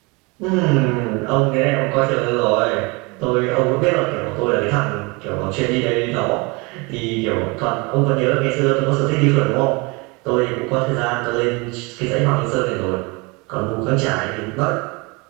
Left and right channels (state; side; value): quieter; left; 27.6 dB